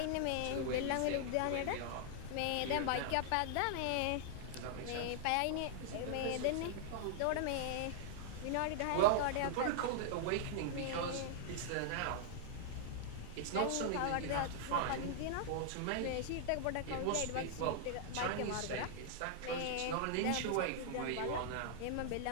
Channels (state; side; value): different; both; correlation -0.01